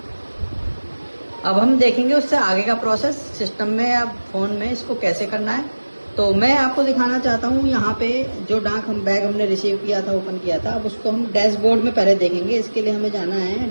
अब हम देखेंगे उससे आगे का प्रोसेस सिस्टम में, अब फोन में इसको कैसे करना है। तो मैं आपको दिखाना चाहता हूँ यहाँ पे जो डाक हम बैग हमने रिसीव किया था, ओपन किया था, अब उसको हम डैशबोर्ड में पहले देखेंगे। इसके लिए हमें जाना है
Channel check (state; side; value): inverted; both; correlation -1.00